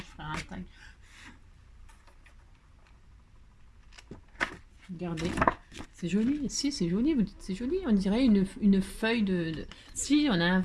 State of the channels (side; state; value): both; identical; correlation 1.00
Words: ferai un tag. Regardez. C'est joli. Si, c'est joli. Vous dites c'est joli. On dirait une feuille de... Si, on a